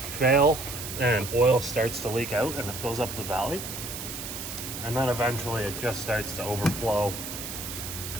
fail and oil starts to leak out and it fills up the valley, and then eventually it just starts to overflow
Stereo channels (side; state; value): right; noise; hiss, 7 dB below the sound